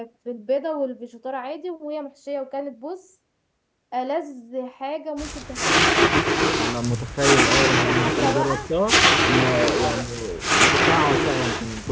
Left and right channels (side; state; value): both; identical; correlation 1.00